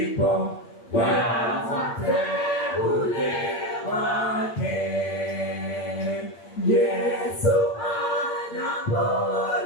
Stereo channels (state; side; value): late; right; 8.7 ms